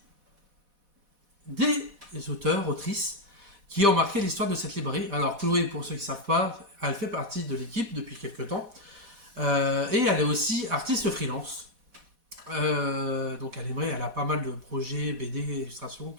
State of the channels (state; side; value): late; left; 4.1 ms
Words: des auteurs, autrices qui ont marqué l'histoire de cette librairie. Alors, Chloé, pour ceux qui ne savent pas, elle fait partie de l'équipe depuis quelques temps. Et elle est aussi artiste freelance. Donc, elle a pas mal de projets, BD, illustrations